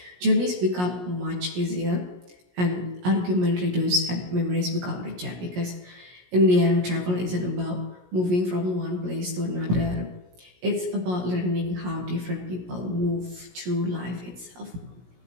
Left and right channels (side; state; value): left; late; 17 ms